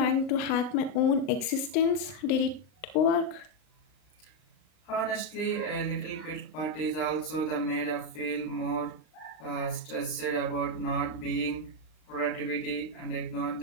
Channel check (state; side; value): late; right; 39 ms